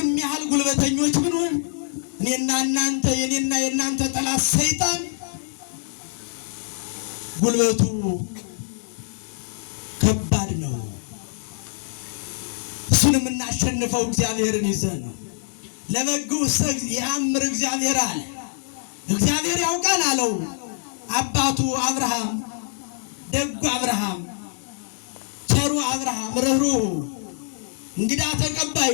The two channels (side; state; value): right; silent; 57 dB below the other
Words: ያህል ጉልበተኞች ብንሆን እኔና እናንተ የኔና የእናንተ ጠላት ሰይጣን ጉልበቱ ከባድ ነው። እሱን የምናሸንፈው እግዚአብሔርን ይዘን ነው። ለበግዑሰ የአምር እግዚአብሔር አለ። እግዚአብሔር ያውቃል አለው አባቱ አብርሃም። ደጉ አብርሃም፣ ቸሩ አብርሃም፣ ርኅሩኅ እንግዳ